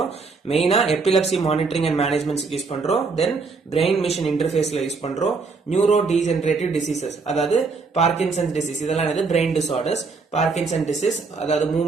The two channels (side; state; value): left; quieter; 4.4 dB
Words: மெயினா epilepsy monitoring and management use பண்றோம். தென் பிரெயின் மிஷின் இன்டர்ஃபேஸ்ல யூஸ் பண்றோம். நியூரோ டீஜெனரேட்டிவ் டிசீசஸ், அதாவது பார்க்கின்சன்ஸ் டிசீஸ், இதெல்லாம் என்னது பிரெயின் டிசார்டர்ஸ். பார்க்கின்சன் டிசீஸ் அதாவது